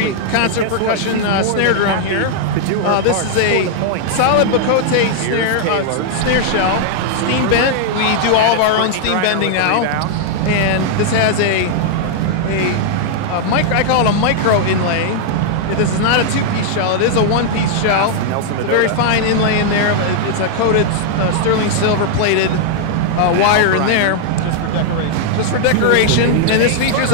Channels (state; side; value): different; both; correlation -0.01